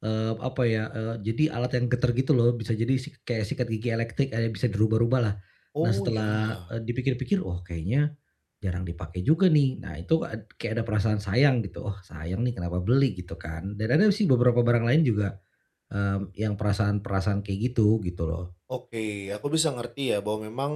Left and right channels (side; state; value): both; identical; correlation 1.00